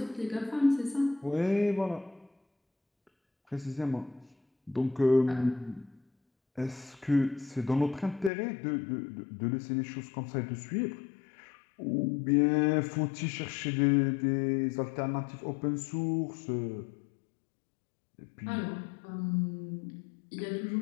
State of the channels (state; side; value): drops out; right; at 8.3 s